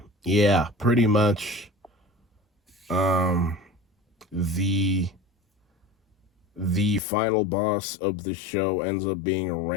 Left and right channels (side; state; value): right; drops out; at 7.0 s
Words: yeah, pretty much the final boss of the show ends up being a